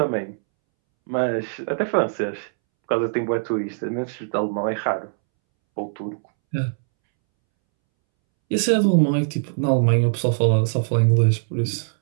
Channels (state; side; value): silent; left; 64 dB below the other